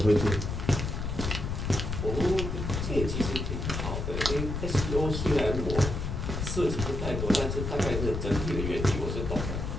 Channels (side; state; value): left; noise; rumble, 3 dB below the sound